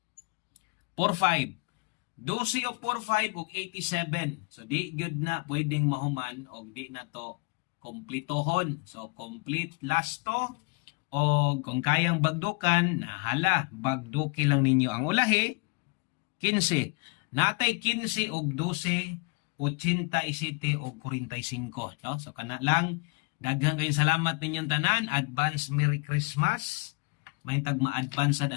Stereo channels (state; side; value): quieter; right; 32.2 dB